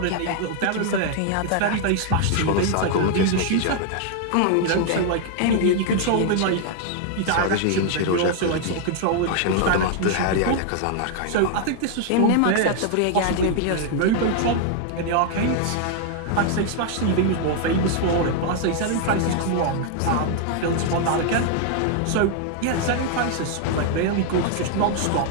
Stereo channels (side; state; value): both; different; correlation 0.00